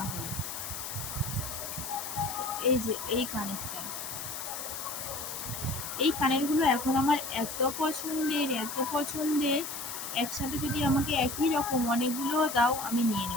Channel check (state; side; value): noise; left; hiss, 7 dB below the sound